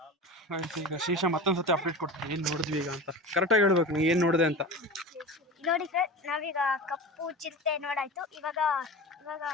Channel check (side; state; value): both; normal; correlation 0.31